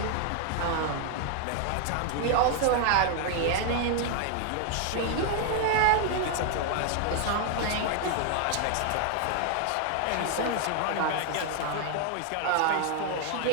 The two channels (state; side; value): different; both; correlation 0.00